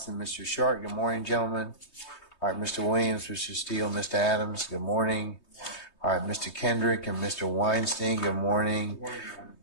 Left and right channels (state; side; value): late; right; 3.2 ms